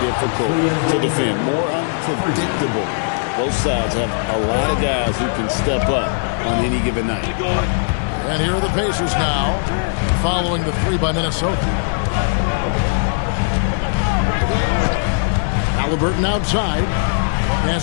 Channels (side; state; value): right; silent; digital silence